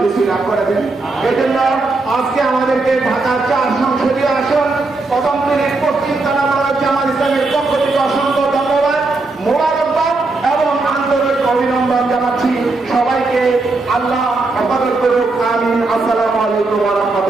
নসিব করে দেন। এজন্য আজকে আমাদেরকে ঢাকার 4 সংসদীয় আসন প্রথম দিনের পশ্চিম থানা জামাত ইসলামের পক্ষ থেকে অসংখ্য ধন্যবাদ, মোবারকবাদ এবং আন্তরিক অভিনন্দন জানাচ্ছি। সবাইকে আল্লাহ হেফাজত করুক, আমিন। আসসালামু আলাইকুম ওয়া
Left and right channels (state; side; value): quieter; left; 3.5 dB